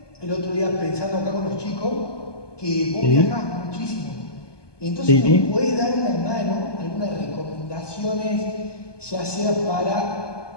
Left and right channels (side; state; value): right; late; 1.2 ms